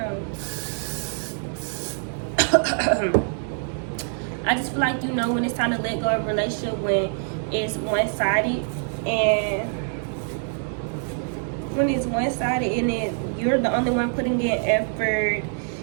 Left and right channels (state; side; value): silent; left; 62 dB below the other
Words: on. I just feel like you know when it's time to let go of a relationship when it's one-sided, and when it's one-sided and then you're the only one putting in effort,